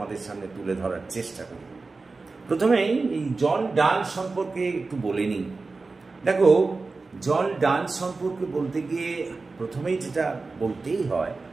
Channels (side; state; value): left; quieter; 3.9 dB